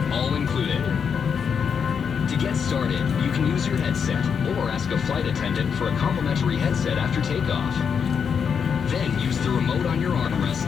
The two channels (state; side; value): quieter; right; 6.8 dB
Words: all included. To get started, you can use your headset or ask a flight attendant for a complimentary headset after takeoff. Then use the remote on your